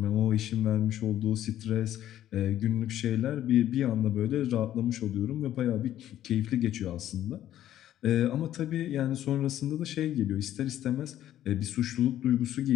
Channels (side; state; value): right; quieter; 12.2 dB